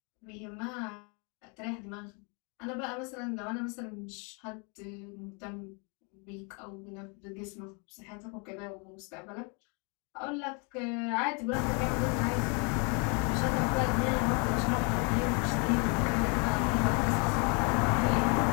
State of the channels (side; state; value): right; quieter; 34.7 dB